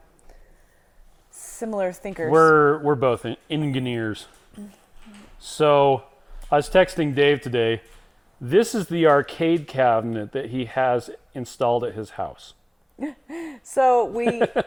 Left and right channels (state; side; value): identical; both; correlation 1.00